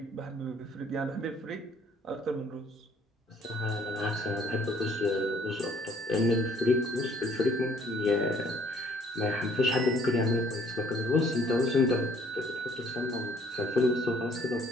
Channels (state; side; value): normal; both; correlation 0.60